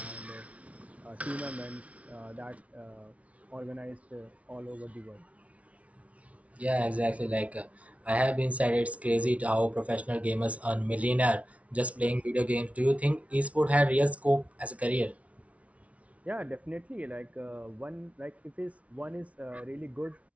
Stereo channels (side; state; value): left; late; 0.065 ms